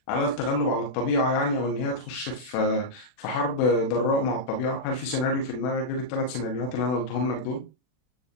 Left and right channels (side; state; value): right; late; 40 ms